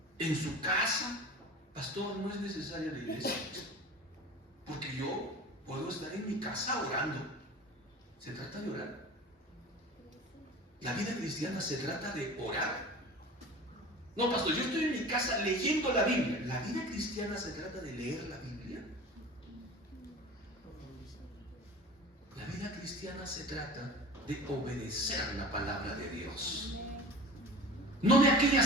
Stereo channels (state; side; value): normal; both; correlation 0.37